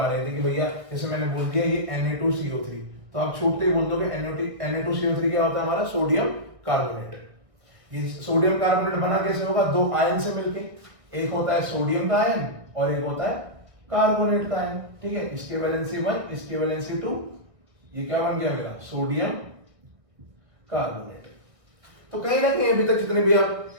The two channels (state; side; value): late; left; 1.6 ms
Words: रहे थे कि भैया जैसे मैंने बोल दिया ये Na2CO3, तो आप छूटते ही बोल दोगे Na2CO3 क्या होता है, हमारा सोडियम कार्बोनेट। ये सोडियम कार्बोनेट बना कैसे होगा, दो आयन से मिलके, एक होता है सोडियम का आयन और एक होता है कार्बोनेट का आयन। ठीक है, इसके वैलेंसी 1, इसके वैलेंसी 2, ये क्या बन गया मेरा, सोडियम कार्बोनेट। तो कहीं ना कहीं अभी तक जितने भी आप